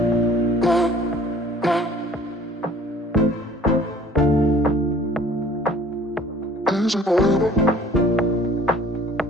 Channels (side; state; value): both; normal; correlation 0.52